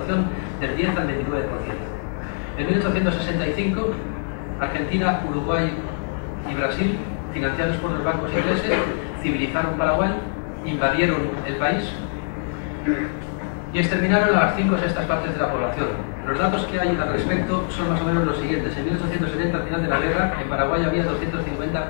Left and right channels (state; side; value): silent; right; digital silence